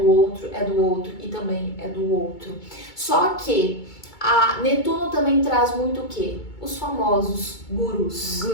outro, é do outro e também é do outro. Só que a Netuno também traz muito o quê? Os famosos gurus.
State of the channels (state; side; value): late; right; 2.2 ms